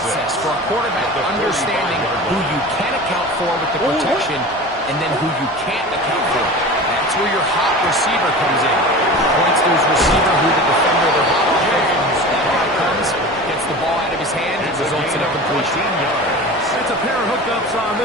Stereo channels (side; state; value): both; normal; correlation 0.34